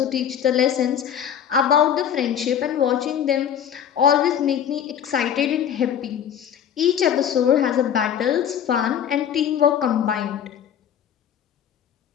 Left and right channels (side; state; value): right; quieter; 9.1 dB